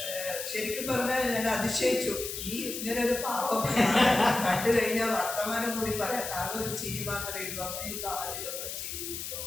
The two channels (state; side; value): noise; left; hiss, 6 dB below the sound